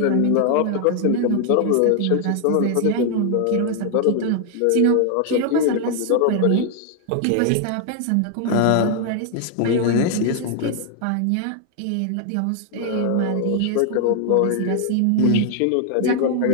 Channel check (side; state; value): both; different; correlation 0.00